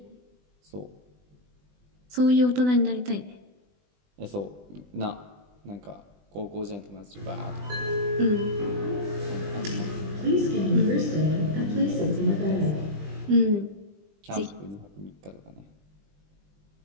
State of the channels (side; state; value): left; late; 20 ms